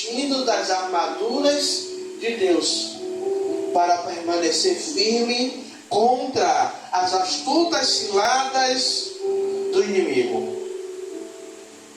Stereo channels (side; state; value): both; identical; correlation 1.00